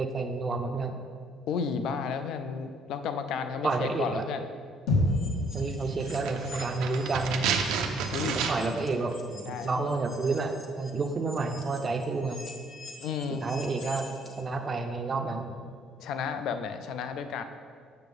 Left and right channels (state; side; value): normal; both; correlation 0.63